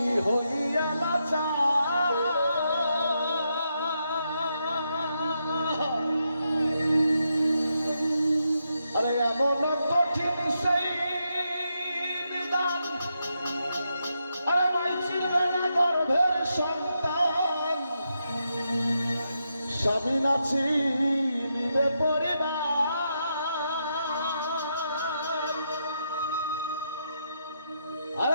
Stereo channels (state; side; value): inverted; both; correlation -0.82